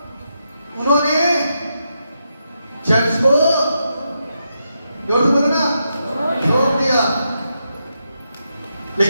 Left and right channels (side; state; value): both; inverted; correlation -0.84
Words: उन्होंने चर्च को जोर से बोलो ना, छोड़ दिया।